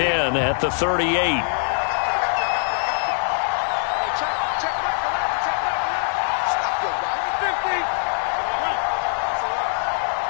at the 38.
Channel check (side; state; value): right; silent; digital silence